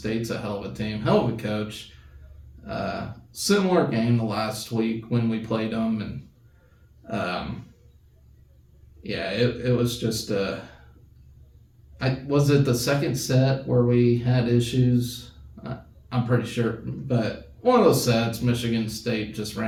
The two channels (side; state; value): both; identical; correlation 1.00